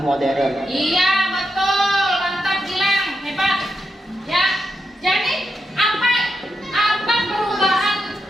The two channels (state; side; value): normal; both; correlation 0.86